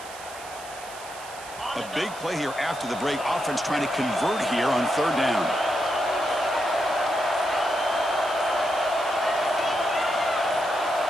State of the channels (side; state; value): right; noise; hiss, 16 dB below the sound